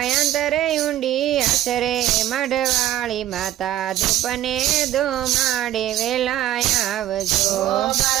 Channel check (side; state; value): left; quieter; 13.2 dB